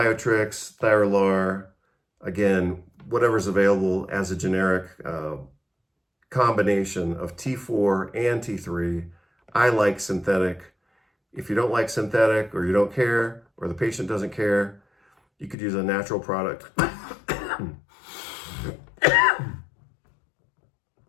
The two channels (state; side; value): drops out; right; at 15.6 s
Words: Thyrolar, again, whatever's available as a generic combination of T4 and T3. I like synthetic. If you don't like synthetic, or you don't care, or the patient doesn't care, you could use a natural product.